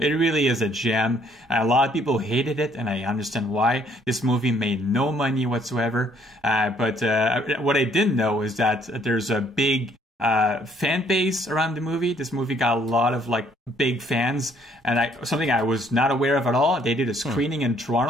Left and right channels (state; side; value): normal; both; correlation 0.64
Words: gem. A lot of people hated it, and I understand why. This movie made no money whatsoever. But what I didn't know is that there's a big fan base around the movie. This movie got a lot of like big fans, and something I was not aware of at all. They did a screening in